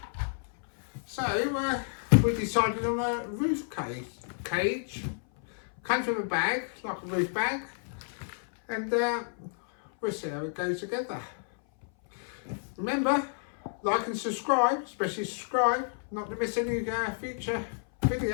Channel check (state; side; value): silent; right; 57 dB below the other